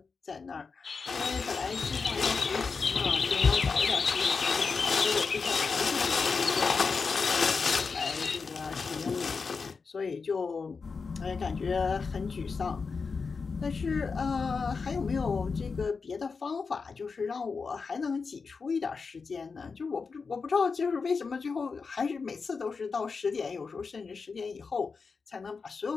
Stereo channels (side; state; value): right; quieter; 4.9 dB